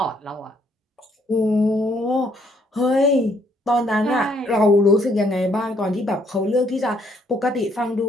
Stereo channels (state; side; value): normal; both; correlation 0.68